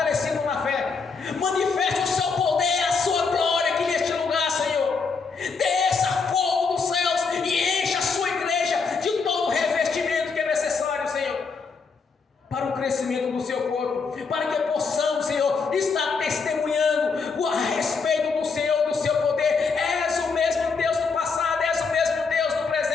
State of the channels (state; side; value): quieter; right; 4.9 dB